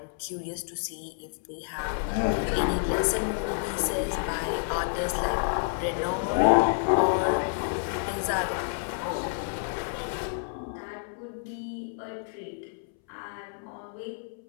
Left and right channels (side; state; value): right; silent; 58 dB below the other